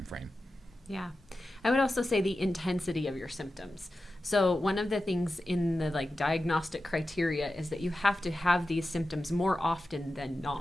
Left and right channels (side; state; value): both; normal; correlation 0.93